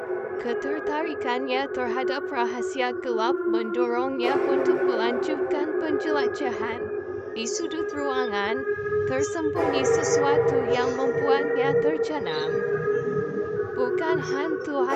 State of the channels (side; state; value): both; identical; correlation 1.00